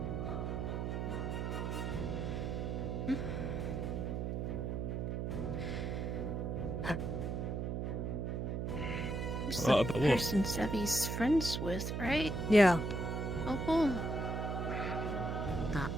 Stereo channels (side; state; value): right; noise; hum, 1 dB below the sound